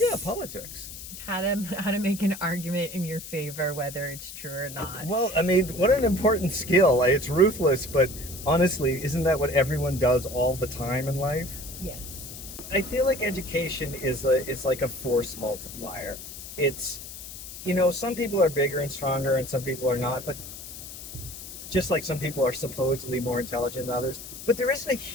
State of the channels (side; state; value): left; noise; hiss, 12 dB below the sound